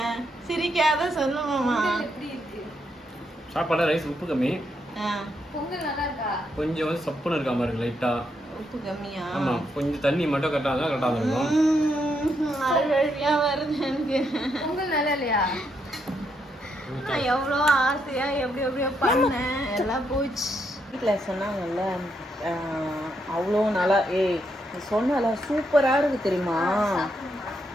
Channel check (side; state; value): both; normal; correlation 0.78